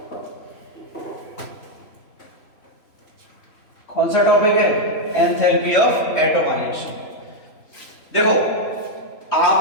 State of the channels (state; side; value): late; right; 3.4 ms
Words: कौन सा टॉपिक है? Enthalpy of atomization. देखो